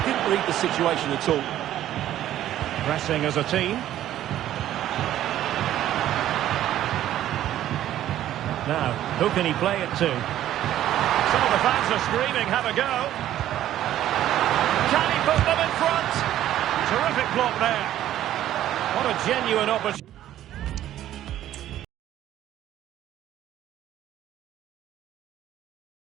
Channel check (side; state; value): left; quieter; 12.5 dB